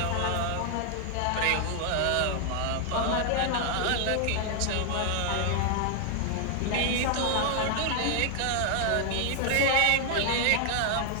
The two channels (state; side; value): different; both; correlation 0.00